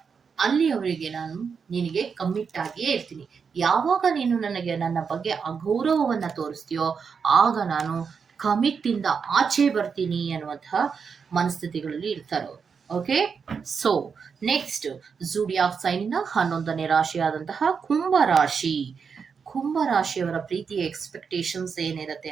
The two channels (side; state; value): left; quieter; 6.0 dB